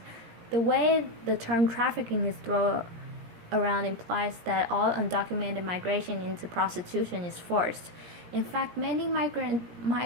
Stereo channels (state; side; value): late; left; 17 ms